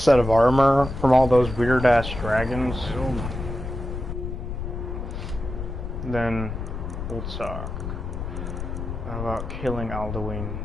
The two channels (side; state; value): left; noise; rumble, 6 dB below the sound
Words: of armor from all those weird-ass dragons, then we'll talk about killing Alduin